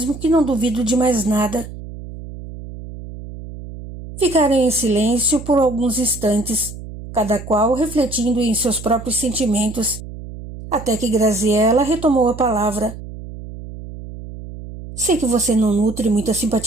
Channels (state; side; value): noise; right; hum, 12 dB below the sound